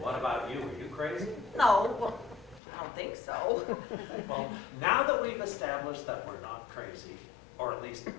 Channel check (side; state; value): right; drops out; at 2.6 s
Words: What about you? Are you crazy? No, well, I don't think so. Well, now that we've established that we're not crazy, or at least